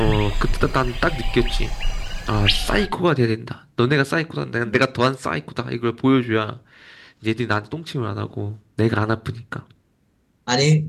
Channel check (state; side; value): identical; both; correlation 1.00